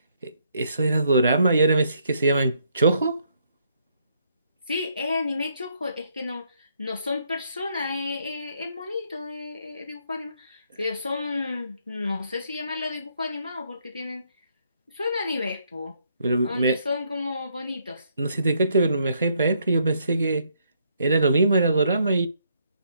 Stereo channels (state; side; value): inverted; both; correlation -0.72